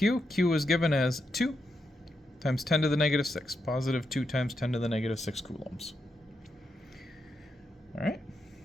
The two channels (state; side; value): normal; both; correlation 0.84